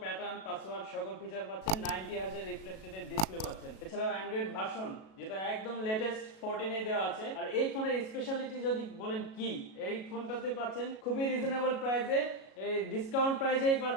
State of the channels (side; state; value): right; late; 37 ms